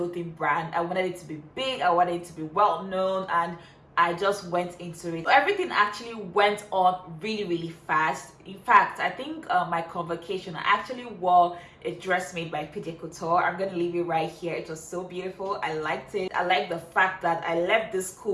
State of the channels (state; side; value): identical; both; correlation 1.00